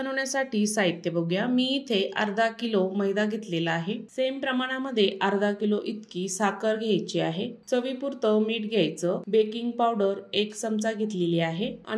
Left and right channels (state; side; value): identical; both; correlation 1.00